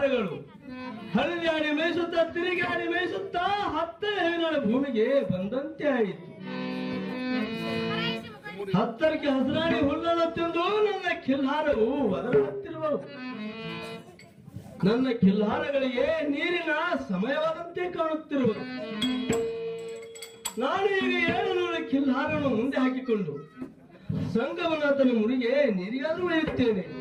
ಹರಿದಾಡಿ ಮೇಯಿಸುತ್ತಾ ತಿರುಗಾಡಿ ಮೇಯಿಸುತ್ತಾ 10 ಹೆಣ್ಣಳ ಭೂಮಿಗೆ ಬಂದಂತೆ ಆಯಿತು. 10ಕ್ಕೆ ಹಸಿರಾಡಿ ಹುಲ್ಲನ್ನು ತಿಂದು ನನ್ನ ಕಿಲ್ಹಾರವು ಒದರುತ್ತಿರುವವು. ನನ್ನ ಕಿಲ್ಹಾರಗಳಿಗೆ ನೀರಿನ ಸಮಯವಾದಂತೆ ಕಾಣುತ್ತಿರುವುದು. ನಾನು ಈಗ 700 ಕಿಲ್ಹಾರವನ್ನು ಮುಂದೆ ಹಾಕಿಕೊಂಡು ಸಂಗಮನಾಥನ ಮುರಿಗೆ ನೀರಿಗಾದರೂ ಒಯ್ಯುತ್ತೇನೆ.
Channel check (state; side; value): identical; both; correlation 1.00